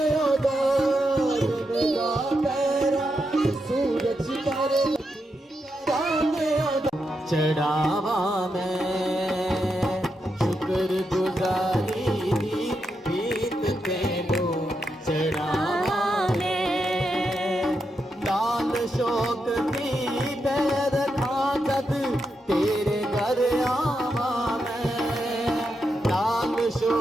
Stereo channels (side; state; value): both; normal; correlation 0.84